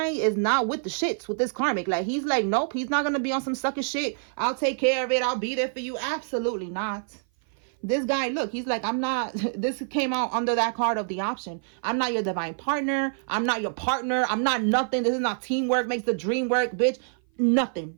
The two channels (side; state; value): left; silent; 56 dB below the other